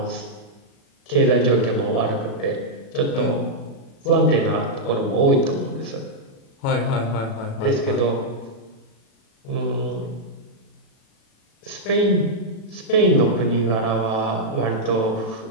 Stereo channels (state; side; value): late; right; 36 ms